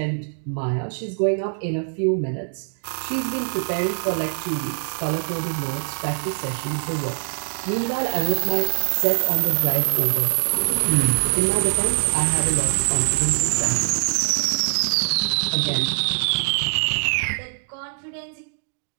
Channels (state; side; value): silent; left; digital silence